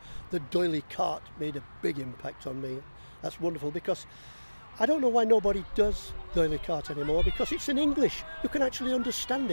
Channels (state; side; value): inverted; both; correlation -1.00